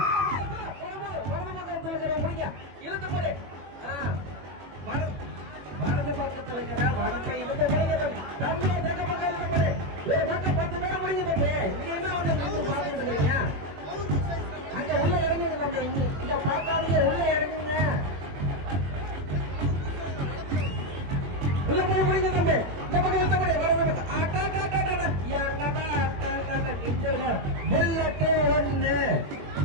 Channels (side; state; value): left; late; 21 ms